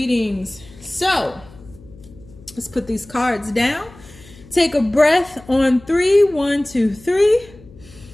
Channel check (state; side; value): noise; left; hum, 22 dB below the sound